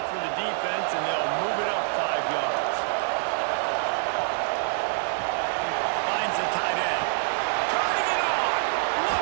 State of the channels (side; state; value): left; silent; digital silence